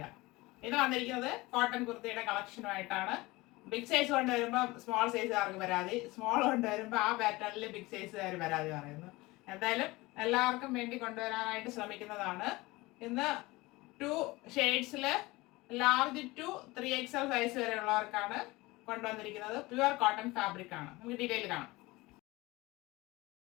ഇത് വന്നിരിക്കുന്നത് കോട്ടൺ കുർത്തിയുടെ കളക്ഷനുമായിട്ടാണ്. ബിഗ് സൈസ് കൊണ്ടുവരുമ്പോൾ സ്മോൾ സൈസുകാർക്ക് പരാതി, സ്മോൾ കൊണ്ടുവരുമ്പോൾ ആ പാറ്റേണിൽ ബിഗ് സൈസുകാർ പരാതി പറയുന്നു. എന്തായാലും എല്ലാവർക്കും വേണ്ടി കൊണ്ടുവരാനായിട്ട് ശ്രമിക്കുന്നതാണ്. ഇന്ന് 2 ഷെയ്ഡ്സിൽ ലാർജ് ടു 3XL സൈസ് വരെ ഉള്ളവർക്കാണ് കൊണ്ടുവന്നിരിക്കുന്നത്. പ്യുവർ കോട്ടൺ ഫാബ്രിക് ആണ്. നമുക്ക് ഡീറ്റെയിൽ കാണാം.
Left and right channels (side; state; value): right; quieter; 21.3 dB